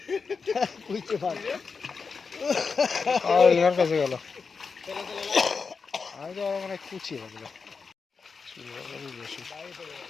ইনার কাছে গেল, আমি তো আরো মানে কুচিয়ে গেল বেশি।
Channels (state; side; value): quieter; right; 5.1 dB